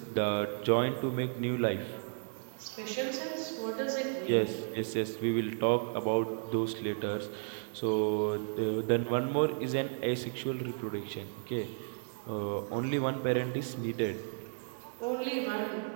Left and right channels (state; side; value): silent; left; digital silence